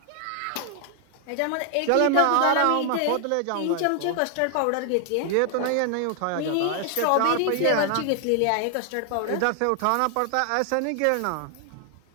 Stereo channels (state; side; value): different; both; correlation 0.00